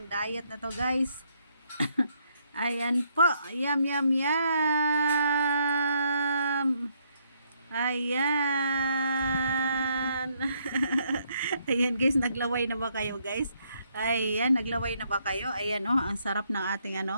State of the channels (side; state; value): both; inverted; correlation -0.72